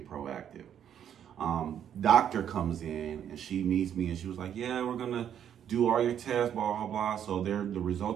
proactive. Doctor comes in and she meets me and she was like, yeah, we're gonna do all your tests, blah, blah, blah. So the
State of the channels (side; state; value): left; quieter; 9.4 dB